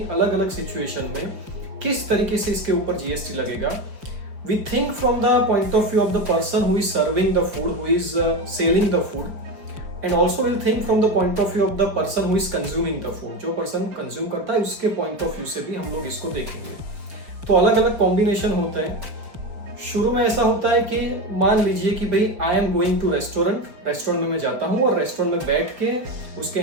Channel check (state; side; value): late; left; 5.2 ms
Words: अलग अलग सिचुएशन में किस तरीके से इसके ऊपर जीएसटी लगेगा। We think from the point of view of the person who is serving the food, who is selling the food, and also will think from the point of view of the person who is consuming the food. जो person consume करता है उसके point of view से भी हम लोग इसको देखेंगे। तो अलग अलग कॉम्बिनेशन होते हैं। शुरू में ऐसा होता है कि मान लीजिए कि भाई I am going to restaurant में मैं जाता हूँ और रेस्टोरेंट में बैठ के उसके